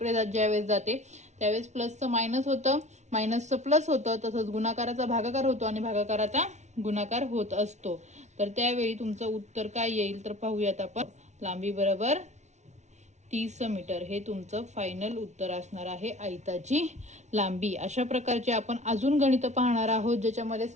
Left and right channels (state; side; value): late; left; 0.33 ms